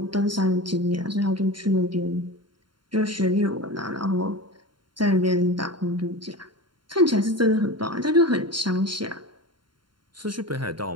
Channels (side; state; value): left; late; 0.72 ms